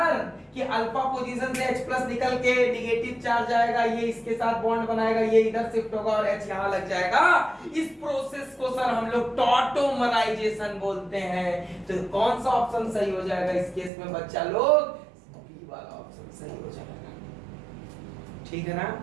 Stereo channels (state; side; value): drops out; left; at 13.9 s